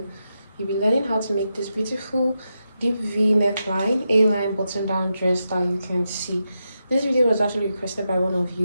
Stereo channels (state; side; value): inverted; both; correlation -0.87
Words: you'll be learning how to make this beautiful deep V neckline A-line button down dress that you can see. This video was actually requested by one of